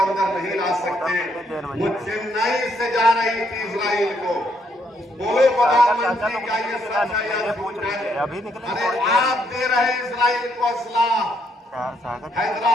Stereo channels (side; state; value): both; normal; correlation 0.73